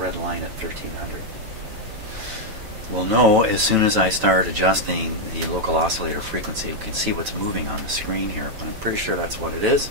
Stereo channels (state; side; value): late; left; 9.1 ms